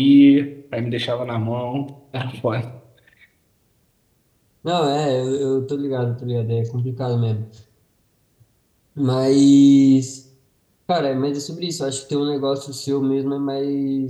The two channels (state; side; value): identical; both; correlation 1.00